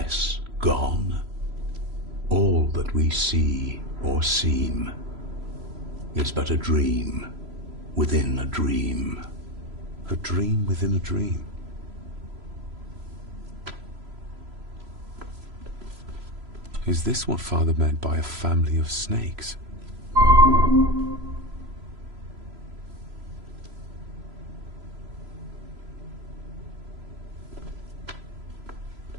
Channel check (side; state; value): left; late; 3.0 ms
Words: gone? All that we see or seem is but a dream within a dream. A dream within a dream. Is this what Father meant by a family of snakes?